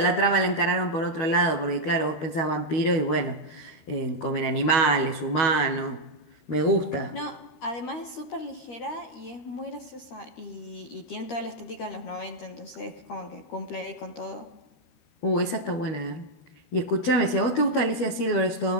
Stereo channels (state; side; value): late; right; 12 ms